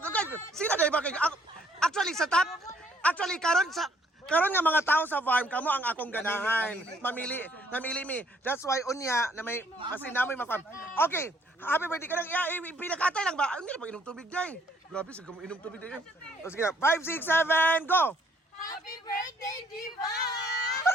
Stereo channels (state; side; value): normal; both; correlation 0.64